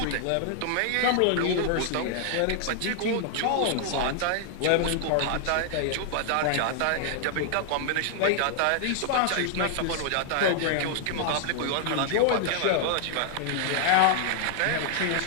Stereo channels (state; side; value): different; both; correlation 0.00